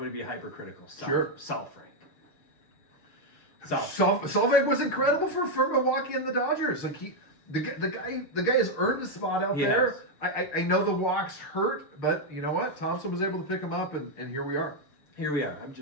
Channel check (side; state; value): right; late; 6.6 ms